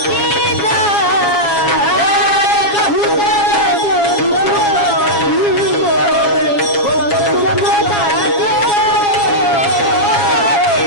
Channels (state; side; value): late; right; 7.3 ms